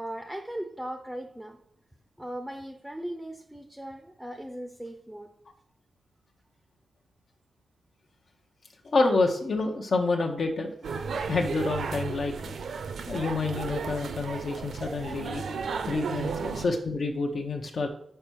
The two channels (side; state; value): both; normal; correlation 0.85